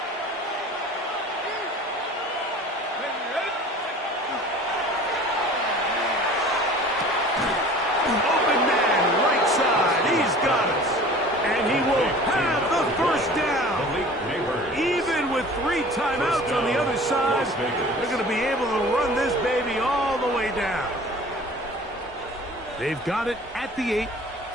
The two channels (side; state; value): both; normal; correlation 0.44